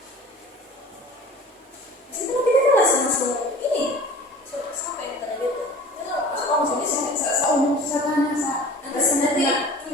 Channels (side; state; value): both; normal; correlation 0.42